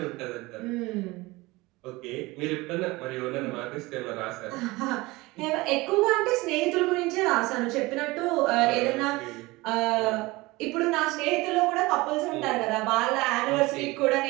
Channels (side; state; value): left; quieter; 21.7 dB